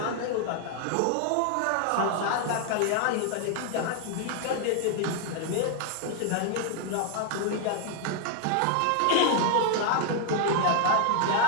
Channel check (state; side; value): different; both; correlation 0.00